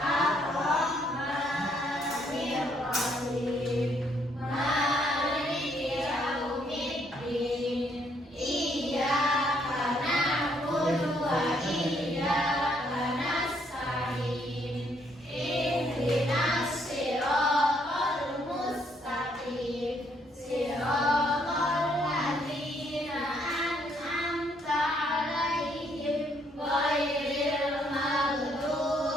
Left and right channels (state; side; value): normal; both; correlation 0.70